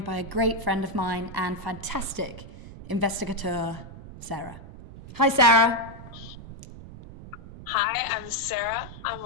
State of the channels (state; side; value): noise; right; rumble, 14 dB below the sound